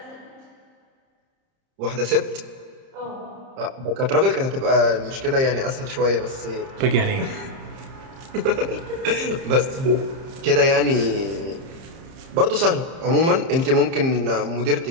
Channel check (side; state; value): left; late; 30 ms